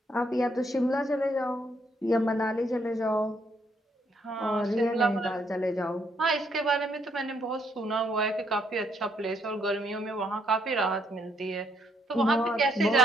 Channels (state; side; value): normal; both; correlation 0.72